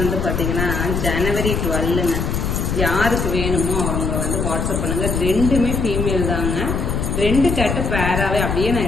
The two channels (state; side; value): noise; left; rumble, 1 dB below the sound